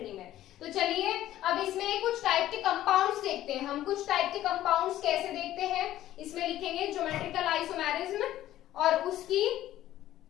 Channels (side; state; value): right; quieter; 13.5 dB